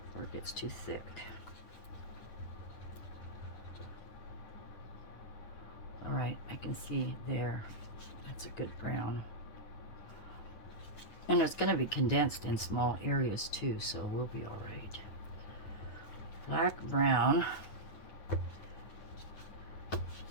before it gets too thick. All right, I can see there. That's a good brown. And it's going to be condensed in small areas too, so we'll be all right. Black, brown.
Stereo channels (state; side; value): late; right; 9.5 ms